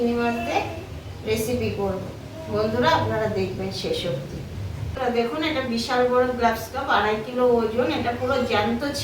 মাছ দিয়ে রেসিপি করব। বন্ধুরা আপনারা দেখবেন শেষ অবধি। দেখুন, এটা বিশাল বড় গ্লাস কাপ, 2.5 কিলো ওজন। এটা পুরো জ্যান্ত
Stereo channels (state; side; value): identical; both; correlation 1.00